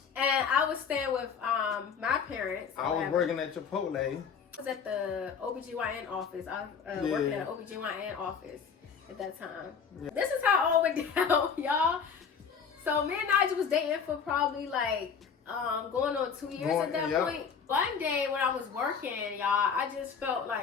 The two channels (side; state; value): right; quieter; 6.5 dB